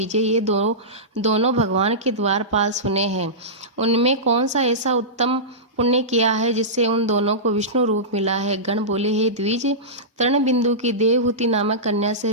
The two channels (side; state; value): both; normal; correlation -0.17